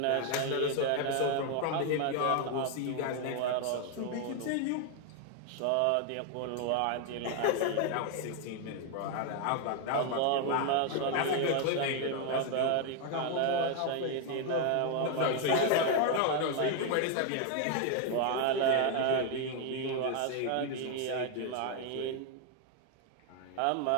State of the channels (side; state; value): both; different; correlation 0.01